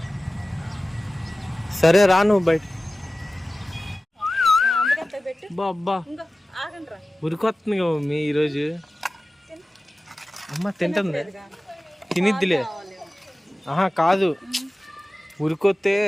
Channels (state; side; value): normal; both; correlation 0.96